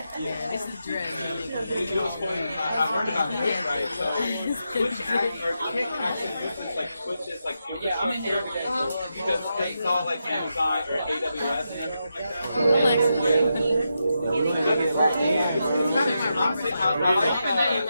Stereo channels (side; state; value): both; inverted; correlation -0.85